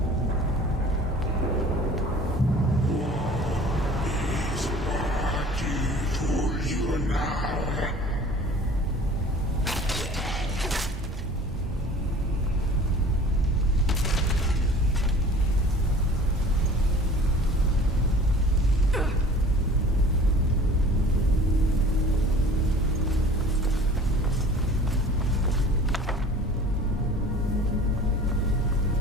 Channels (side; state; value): both; normal; correlation 0.46